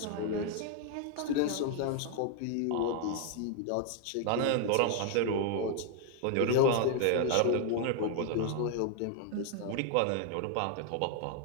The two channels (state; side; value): different; both; correlation 0.00